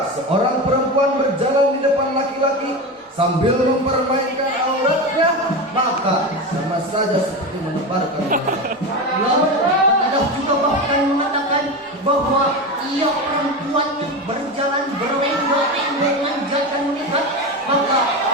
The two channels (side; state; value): both; normal; correlation 0.21